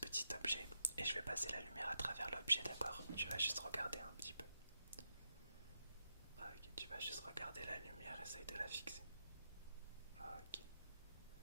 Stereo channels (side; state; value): both; inverted; correlation -0.83